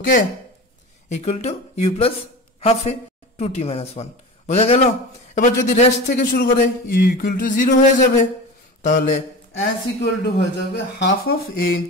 equal to u plus half A 2t minus 1। বোঝা গেল? এবার যদি রেস্ট থেকে শুরু করে u equal to 0 হয়ে যাবে, তাহলে s equal to হয়ে যাবে half of a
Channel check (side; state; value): both; normal; correlation 0.31